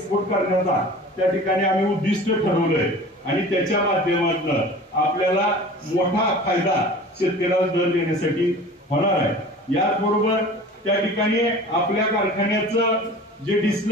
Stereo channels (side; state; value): both; normal; correlation 0.41